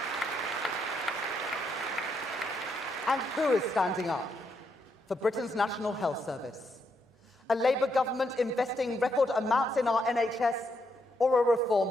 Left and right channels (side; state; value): both; normal; correlation 0.78